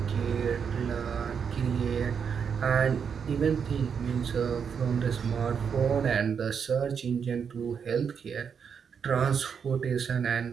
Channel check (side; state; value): left; quieter; 6.8 dB